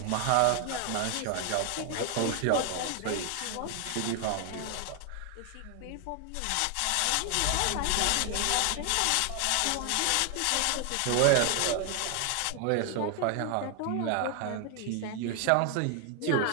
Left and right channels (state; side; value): different; both; correlation 0.00